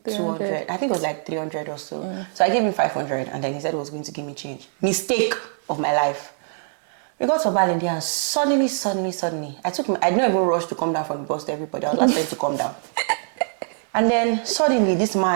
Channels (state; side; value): silent; left; digital silence